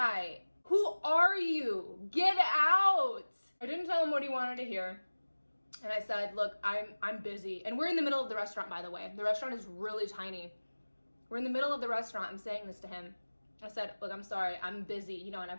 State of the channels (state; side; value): inverted; both; correlation -1.00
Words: who are you? Get out! I didn't tell him what he wanted to hear. And I said, look, I'm busy. And we're in the middle of the restaurant, by the way. The restaurant is really tiny. We're in the middle of the restaurant. I'm saying this to him. I said, look, I'm sorry, I'm busy, you know, and I